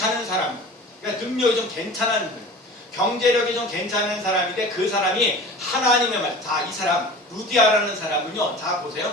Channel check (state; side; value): normal; both; correlation 0.39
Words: 사람, 그러니까 능력이 좀 괜찮은 거예요. 경제력이 좀 괜찮은 사람인데 그 사람이 하나님의 말, 자, 이 사람 루디아라는 사람은요, 자